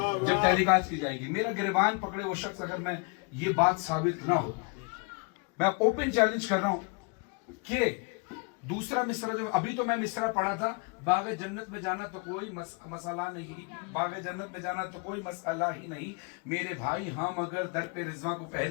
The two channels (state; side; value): quieter; right; 33.7 dB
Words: جب تحقیقات کی جائے گی، میرا گریبان پکڑے وہ شخص اگر میں یہ بات ثابت نہ ہو، میں اوپن چیلنج کر رہا ہوں کہ دوسرا مصرع جو ابھی تو میں مصرع پڑھا تھا، باغ جنت میں جانا تو کوئی مسئلہ نہیں، باغ جنت میں جانا تو کوئی مسئلہ ہی نہیں میرے بھائی، ہاں مگر در پہ رضوان کو